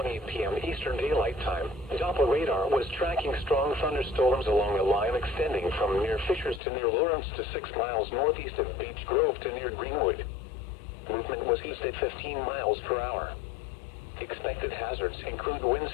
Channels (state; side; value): drops out; right; at 6.6 s